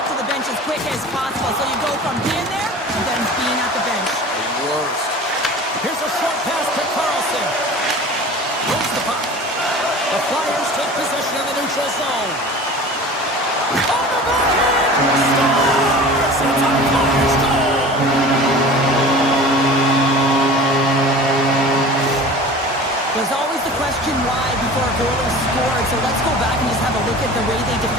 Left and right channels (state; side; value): normal; both; correlation 0.39